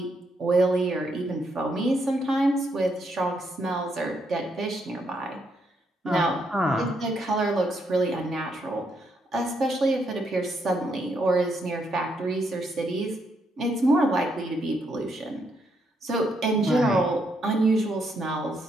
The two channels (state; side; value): normal; both; correlation 0.77